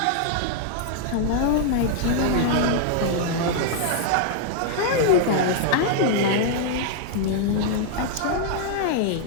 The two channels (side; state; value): both; different; correlation -0.01